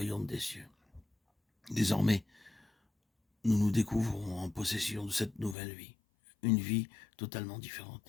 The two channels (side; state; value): right; drops out; at 5.6 s